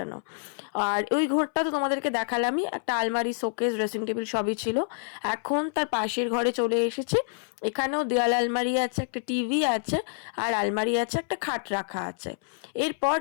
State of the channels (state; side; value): silent; right; 60 dB below the other